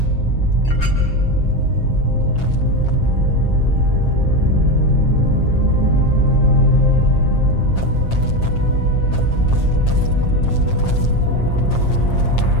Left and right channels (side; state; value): right; late; 7.5 ms